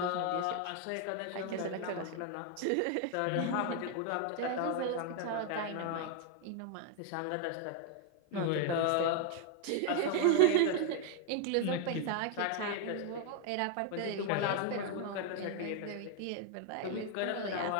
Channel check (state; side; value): different; both; correlation 0.01